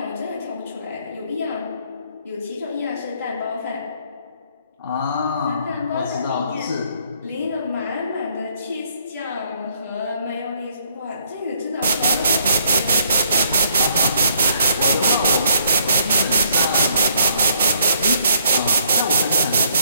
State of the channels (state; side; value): inverted; both; correlation -0.68